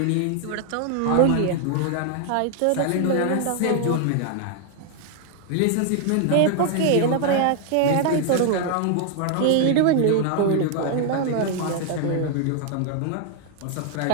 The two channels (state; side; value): different; both; correlation 0.00